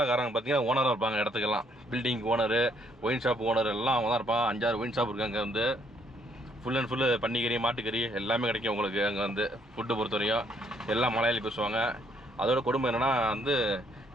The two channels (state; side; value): normal; both; correlation 0.68